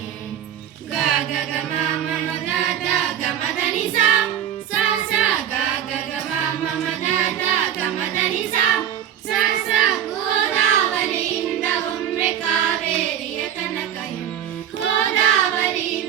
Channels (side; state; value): left; quieter; 9.9 dB